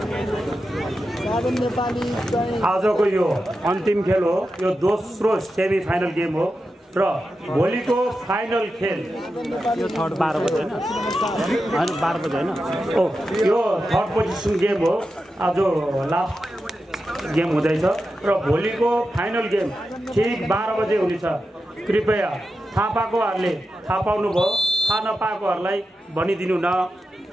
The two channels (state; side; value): normal; both; correlation 0.90